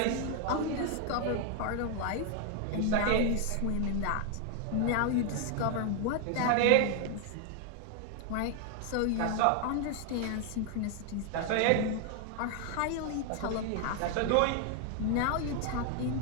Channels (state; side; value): different; both; correlation 0.00